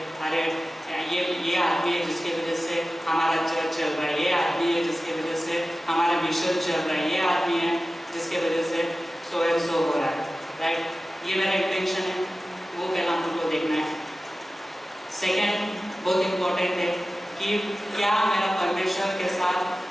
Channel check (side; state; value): both; normal; correlation 0.95